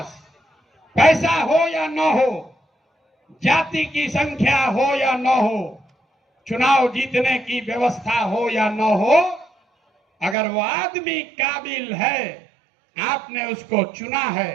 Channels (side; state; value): left; drops out; at 10.4 s